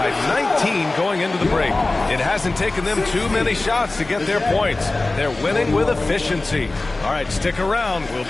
19 going into the break. It hasn't taken them too many shots to get their points. They're winning with efficiency. All right, stick around. We'll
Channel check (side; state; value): right; quieter; 3.1 dB